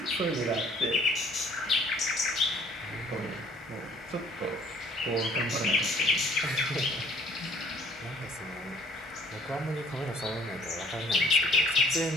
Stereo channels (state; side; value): normal; both; correlation 0.56